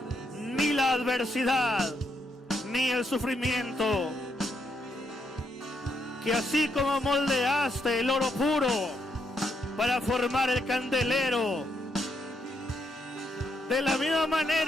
ni la adversidad, ni el sufrimiento. Que así como moldeaste el oro puro para formar el candelero, de la misma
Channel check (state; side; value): normal; both; correlation 0.78